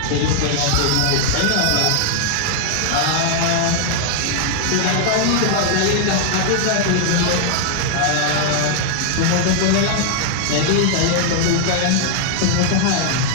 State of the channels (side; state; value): both; different; correlation 0.00